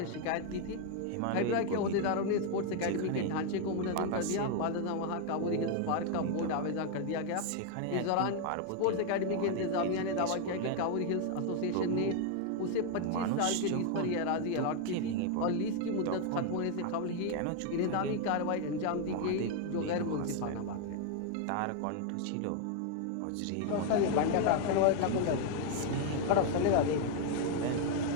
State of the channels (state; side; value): different; both; correlation 0.00